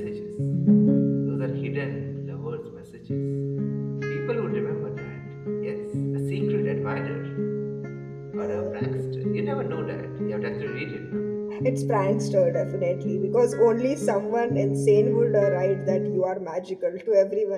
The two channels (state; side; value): identical; both; correlation 1.00